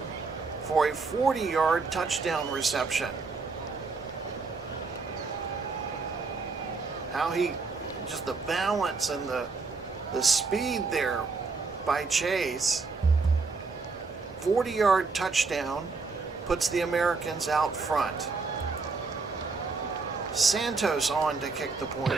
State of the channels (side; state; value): left; quieter; 4.3 dB